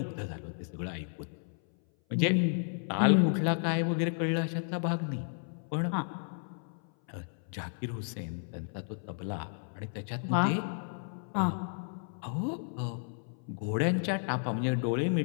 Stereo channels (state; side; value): silent; right; 56 dB below the other